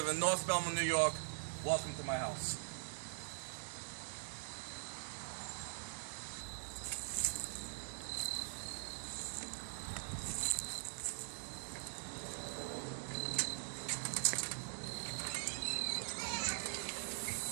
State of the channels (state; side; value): silent; left; digital silence